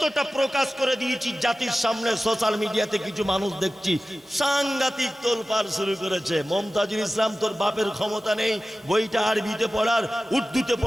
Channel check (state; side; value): normal; both; correlation 0.95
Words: প্রকাশ করে দিয়েছি জাতির সামনে। সোশ্যাল মিডিয়াতে কিছু মানুষ দেখছি সাংঘাতিক তোলপাড় শুরু করেছে। মমতাজুল ইসলাম, তোর বাপের ক্ষমতা নেই বইটা আরবিতে পড়ার, উর্দুতে